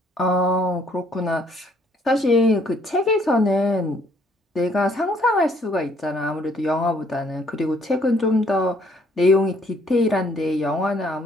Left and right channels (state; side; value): normal; both; correlation 0.64